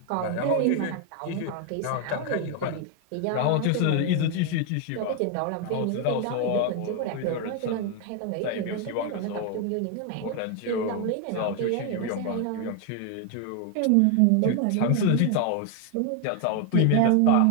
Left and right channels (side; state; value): both; different; correlation 0.00